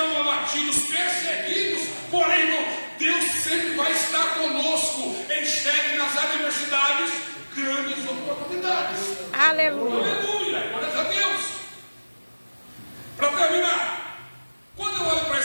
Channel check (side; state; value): both; inverted; correlation -1.00